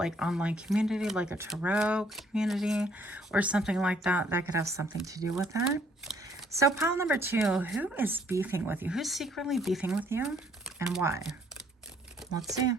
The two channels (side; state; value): both; normal; correlation 0.64